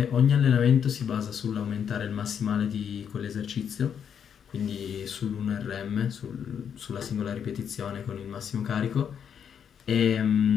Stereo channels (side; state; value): right; quieter; 8.0 dB